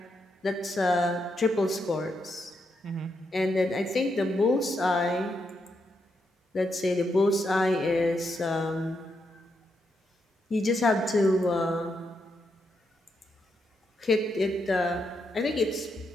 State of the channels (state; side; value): normal; both; correlation 0.81